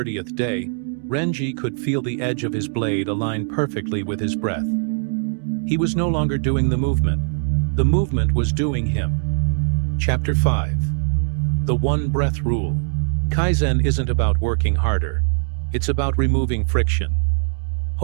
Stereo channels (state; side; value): silent; left; digital silence